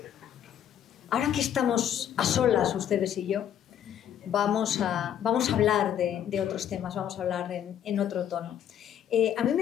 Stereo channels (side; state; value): right; quieter; 9.9 dB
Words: Ahora que estamos a solas, ustedes y yo, vamos a hablar de otros temas, vamos a hablar en otro tono. A mí